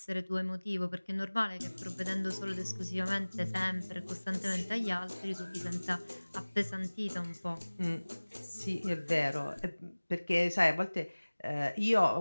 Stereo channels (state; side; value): inverted; both; correlation -1.00